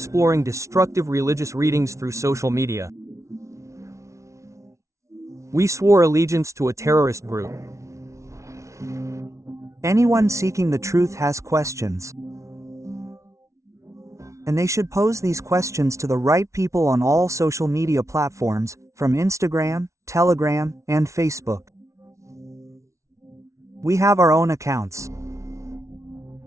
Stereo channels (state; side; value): late; left; 0.14 ms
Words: destructive religious readings through social media. We swore allegiance to a terrorist group. Anyone seeking the truth has questions. And they should pose these questions to the right people on all social media platforms, from Instagram, Telegram, and Facebook. We have our own accounts.